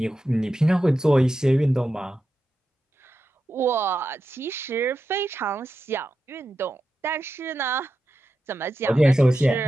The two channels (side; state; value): both; normal; correlation 0.89